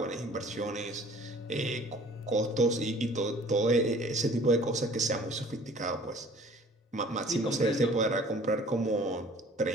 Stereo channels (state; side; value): normal; both; correlation 0.51